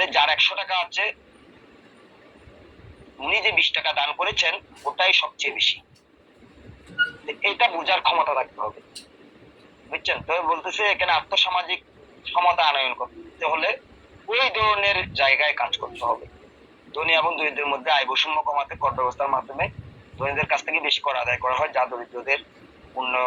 যার 100 টাকা আছে, উনি যে 20 টাকা দান করেছেন ওটাই সবচেয়ে বেশি। এটা বোঝার ক্ষমতা রাখতে হবে, বুঝছেন? তবে বলতেছে এখানে আর্থসামাজিক ক্ষমতা আনয়ন করতে হলে ওই ধরনের জায়গায় কাজ করতে হবে। ধনী এবং দরিদ্রের মধ্যে আয় বৈষম্য কমাতে কর ব্যবস্থার মাধ্যমে ধনীদের কাছ থেকে বেশি কর আদায় করা হয়, যা দরিদ্রদের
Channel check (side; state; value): both; identical; correlation 1.00